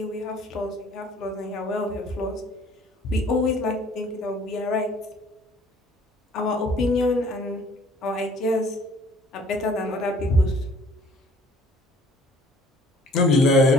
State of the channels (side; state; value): both; normal; correlation 0.55